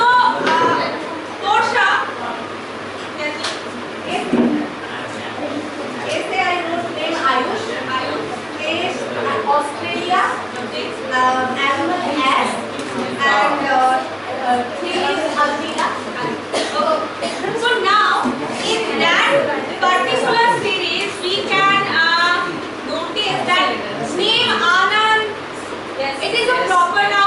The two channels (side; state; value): both; identical; correlation 1.00